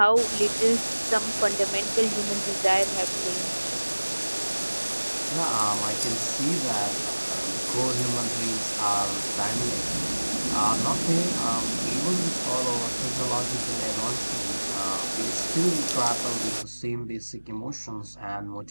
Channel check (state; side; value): inverted; both; correlation -1.00